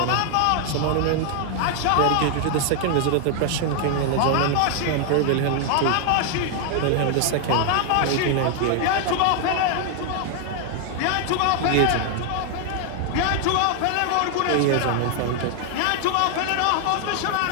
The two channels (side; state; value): both; different; correlation 0.00